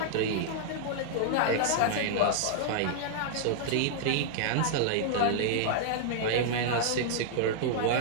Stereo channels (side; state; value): both; different; correlation -0.01